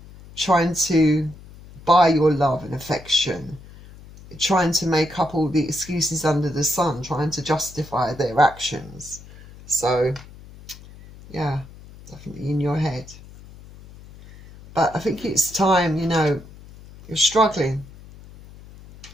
trying to buy your love and affection, trying to make up all the excuses under the sun, trying to justify their actions. So, yeah, definitely in your head. But I think it's time, you know, you're struggling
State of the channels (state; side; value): noise; left; hum, 19 dB below the sound